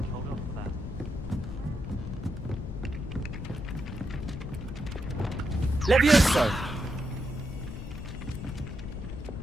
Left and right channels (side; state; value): left; noise; rumble, 8 dB below the sound